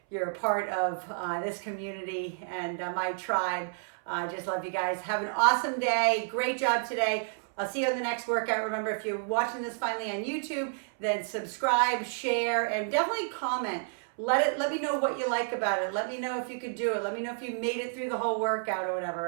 you're a part of this community and my tribe. I just love you guys. Have an awesome day. Great job today. I'll see you on the next workout. Remember, if you're watching this finally on YouTube, then subscribe, share, and definitely comment. Let me know what you like about it. Let me know if you could do it. Let me know if you made it through the whole workout or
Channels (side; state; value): left; silent; 58 dB below the other